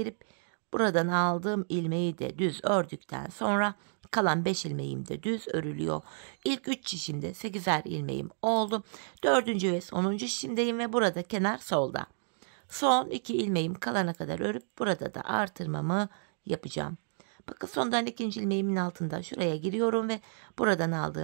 buradan aldığım ilmeği de düz ördükten sonra kalan 5 ilmeğim de düz örülüyor. İlk 3 şişimde 8'er ilmeğim oldu. 4. ve sonuncu şişimdeyim ve burada kenar solda. Son 2 ilmeğim kalana kadar örüp burada da artırmamı yapacağım. Bakın sondan 2. ilmeğimin altında şuraya giriyorum ve buradan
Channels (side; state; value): left; silent; digital silence